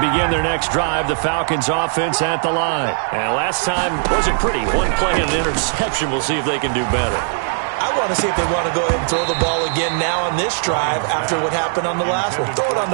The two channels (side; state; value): left; silent; digital silence